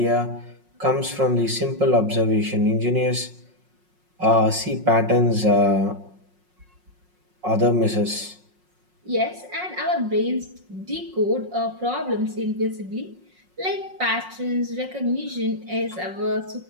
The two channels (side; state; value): left; late; 5.5 ms